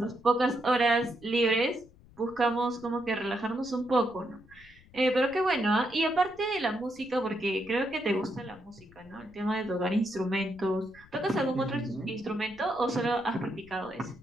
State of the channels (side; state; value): left; noise; rumble, 25 dB below the sound